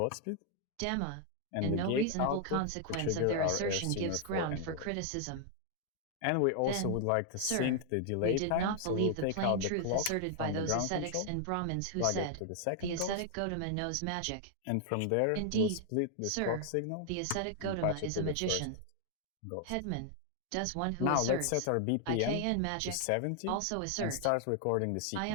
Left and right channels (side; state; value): both; different; correlation 0.00